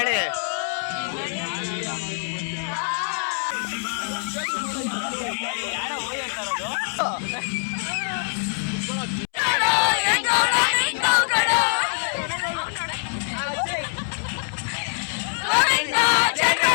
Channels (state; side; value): silent; right; 62 dB below the other